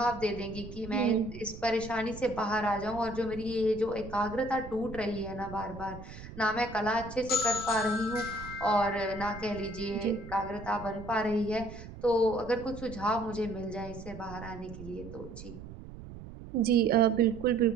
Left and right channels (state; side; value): noise; right; rumble, 13 dB below the sound